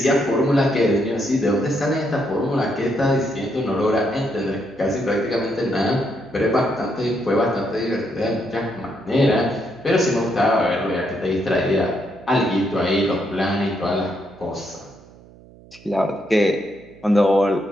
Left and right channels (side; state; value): right; noise; hum, 23 dB below the sound